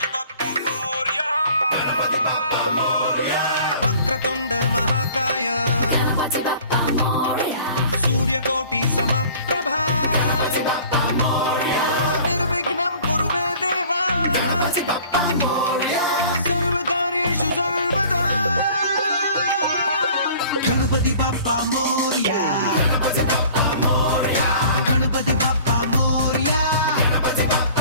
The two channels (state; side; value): inverted; both; correlation -0.49